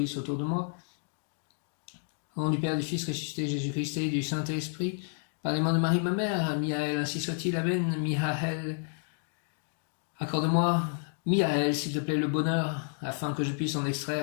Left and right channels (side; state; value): right; silent; 57 dB below the other